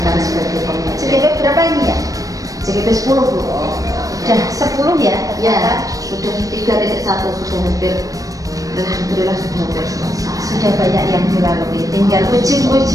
sebagai pengajar. JGP berapa ini ya? JGP 10 Bu. Sudah 10 ya? Ya, sudah 3.1 sudah hampir. Alhamdulillah sudah hampir selesai. Sudah banyak yang dilalui, tinggal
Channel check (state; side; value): late; left; 0.17 ms